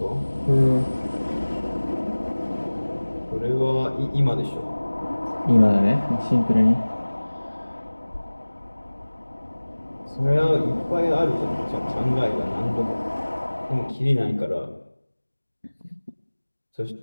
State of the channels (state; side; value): inverted; both; correlation -1.00